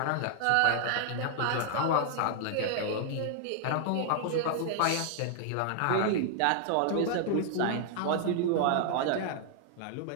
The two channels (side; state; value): both; different; correlation -0.01